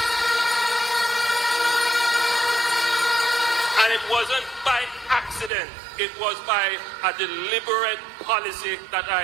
It was by a deliberate policy that I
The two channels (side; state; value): left; drops out; at 5.5 s